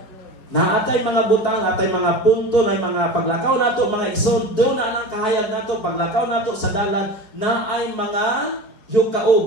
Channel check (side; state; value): right; late; 4.8 ms